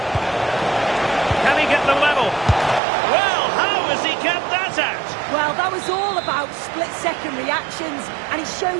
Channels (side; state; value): left; drops out; at 2.8 s